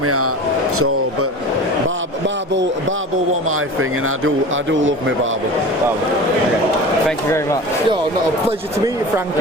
out. So, but barbel was my thing, and I do love my barbel. Okay. Thank you very much. Yo, not a pleasure to meet you,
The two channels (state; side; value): normal; both; correlation 0.35